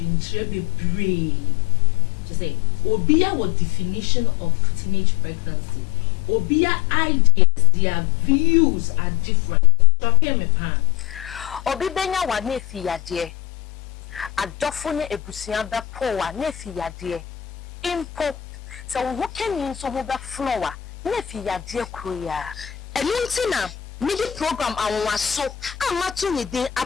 brave. To say, Obia what definition of teenage pregnancy. Obia ideas, their views are different. Me pan. Obi benya wa nefi ya die. Adofone ebusia da po wa nefi ya die. Impo so what can you so hold that flower? Nefi ya dear Korea. And Muntina, midi program I was so I'm not to need the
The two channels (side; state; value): right; quieter; 12.6 dB